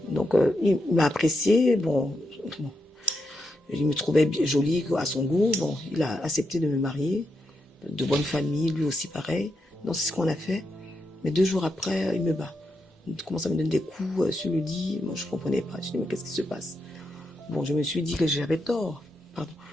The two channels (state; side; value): normal; both; correlation 0.84